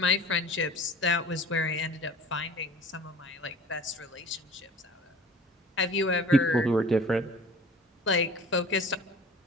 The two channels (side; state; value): both; normal; correlation 0.44